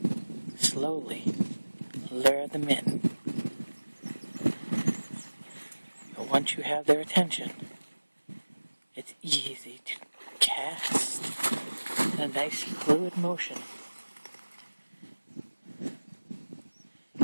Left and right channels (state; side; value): inverted; both; correlation -1.00